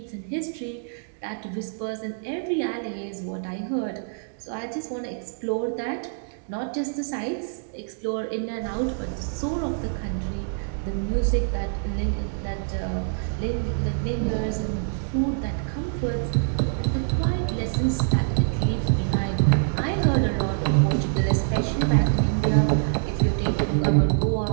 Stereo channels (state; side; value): silent; left; digital silence